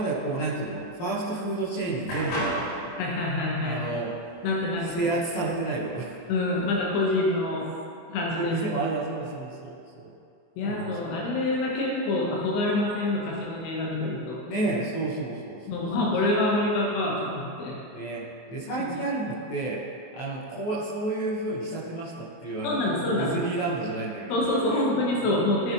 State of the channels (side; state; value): right; late; 24 ms